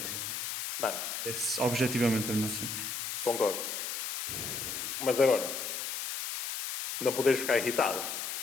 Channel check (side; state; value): left; noise; hiss, 4 dB below the sound